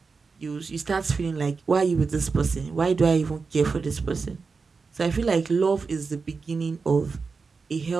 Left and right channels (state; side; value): quieter; left; 4.7 dB